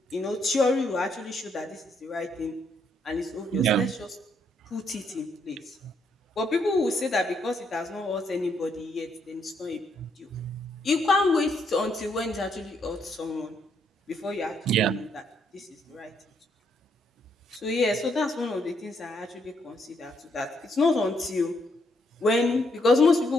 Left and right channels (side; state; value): both; normal; correlation 0.74